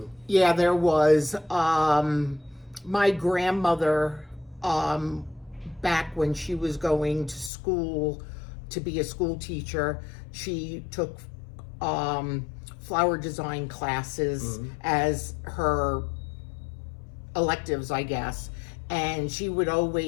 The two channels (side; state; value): right; drops out; at 7.5 s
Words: Yeah, there was. My grandmother, back when she was going to school to be a school teacher, she took flower design classes as her electives, I guess. And she would